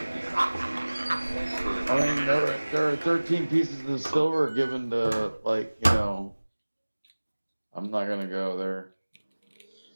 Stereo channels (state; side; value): inverted; both; correlation -1.00